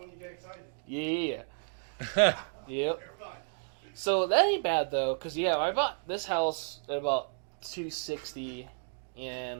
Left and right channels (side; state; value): left; silent; 56 dB below the other